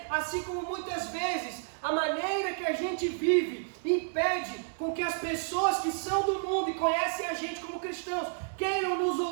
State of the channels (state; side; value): silent; left; digital silence